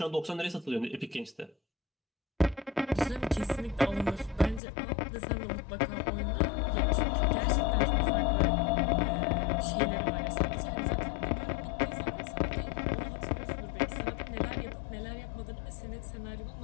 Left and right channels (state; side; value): drops out; right; at 4.6 s